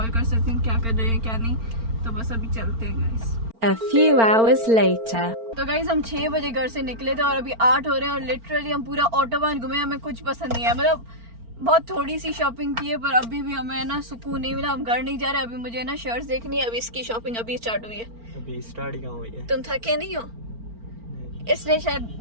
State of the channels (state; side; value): late; left; 4.4 ms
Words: कर सकते हैं, क्या कर रहे हैं क्या नहीं। तो बस अभी चलते हैं guys. A few hours later. तो गाइस हम 6 बजे घर से निकले थे और अभी 8 हो रहे हैं, और लिटरली हम पूरा ऑटोबान घूमे, हमें कुछ पसंद नहीं है। मतलब बहुत थोड़ी सी शॉपिंग की है, पर अभी भी हमें ना सुकून नहीं मिला, हम घर नहीं जा रहे। अभी मुझे ना शर्ट्स देखनी है, अभी इसकी शॉपिंग अभी स्टार्ट हुई है। अभी स्टार्ट कहाँ हुई है? तुम थके नहीं हो, इसलिए शायद